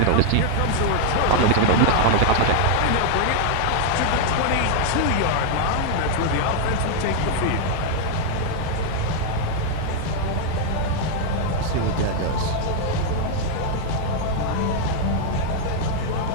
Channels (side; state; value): both; different; correlation 0.00